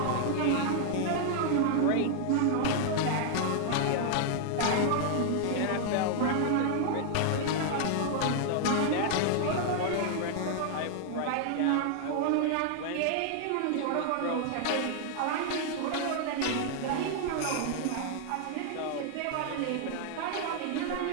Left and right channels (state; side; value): different; both; correlation 0.00